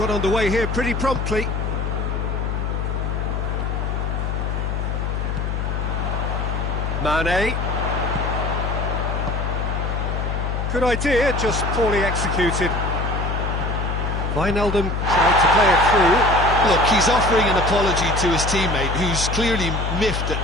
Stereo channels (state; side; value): noise; left; hum, 1 dB below the sound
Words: underway here pretty promptly. Mane. Good idea, just poorly executed. Wijnaldum tried to play it through. Look, he's offering an apology to his teammate, who's clearly miffed